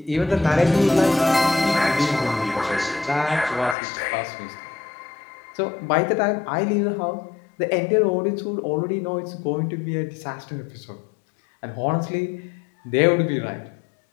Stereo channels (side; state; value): right; drops out; at 3.8 s